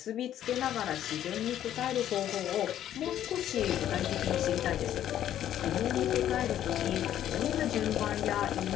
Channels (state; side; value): quieter; right; 11.3 dB